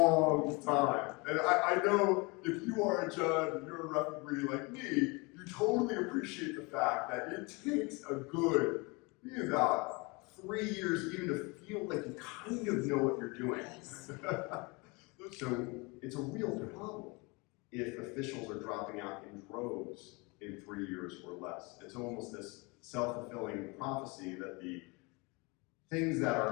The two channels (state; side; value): quieter; right; 27.6 dB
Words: time. And I know if you are a judge and you're a referee like me, you totally appreciate the fact that it takes a good, maybe about 3 years even to feel like you kind of know what you're doing. So it's a real problem if officials are dropping out in droves in 3 years or less. It's almost this self-fulfilling prophecy that the things that